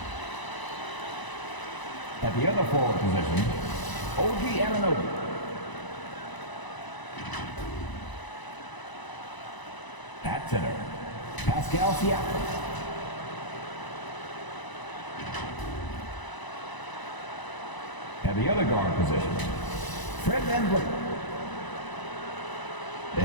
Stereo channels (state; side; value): late; right; 1.0 ms